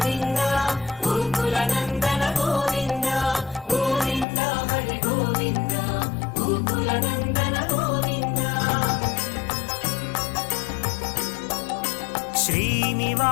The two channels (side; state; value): right; drops out; at 4.2 s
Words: గోకుల నందన గోవింద గోవింద హరి గోవింద గోకుల నందన గోవింద